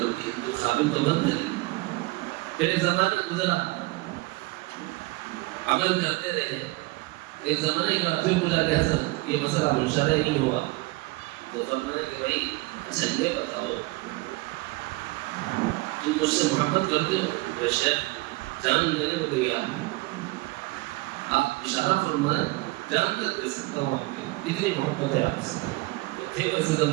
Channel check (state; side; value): quieter; left; 22.8 dB